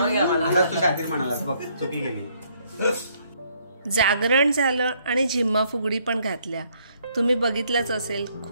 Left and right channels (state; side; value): inverted; both; correlation -0.68